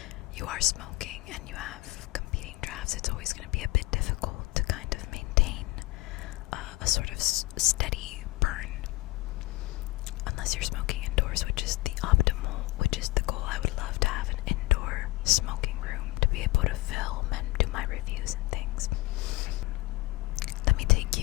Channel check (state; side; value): quieter; right; 20.7 dB